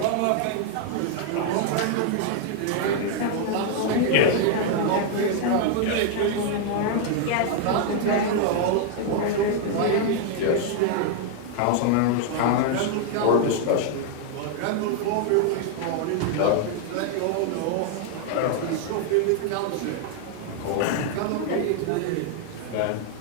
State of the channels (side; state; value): both; different; correlation 0.00